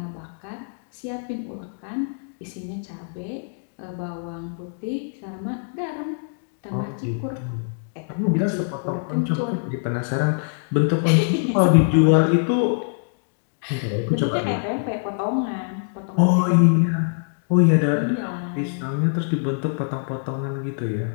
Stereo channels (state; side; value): silent; right; digital silence